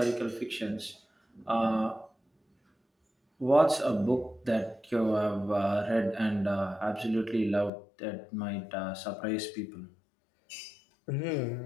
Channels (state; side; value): drops out; right; at 7.7 s